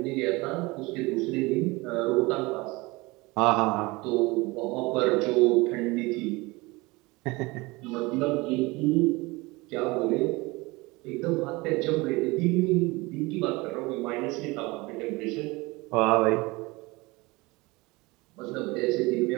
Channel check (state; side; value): quieter; left; 23.3 dB